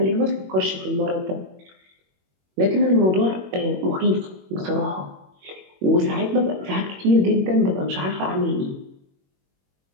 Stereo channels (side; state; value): left; late; 21 ms